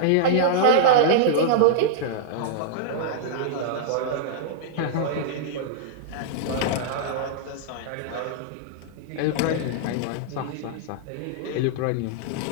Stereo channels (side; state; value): both; different; correlation -0.02